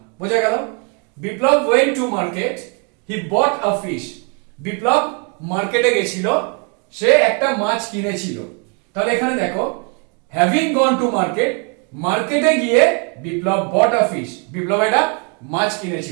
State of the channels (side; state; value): left; quieter; 35.6 dB